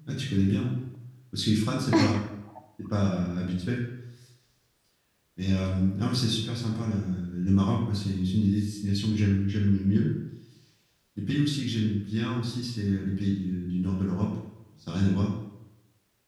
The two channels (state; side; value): identical; both; correlation 1.00